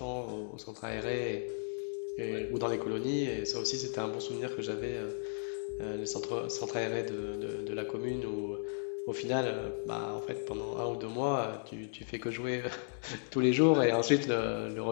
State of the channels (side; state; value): right; silent; digital silence